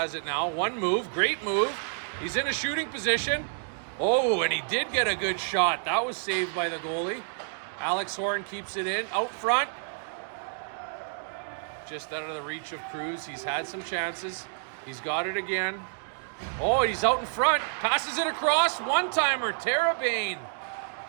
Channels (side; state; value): left; silent; digital silence